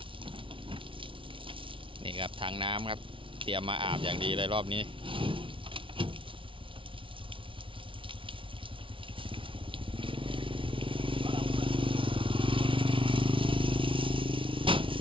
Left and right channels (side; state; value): left; late; 0.25 ms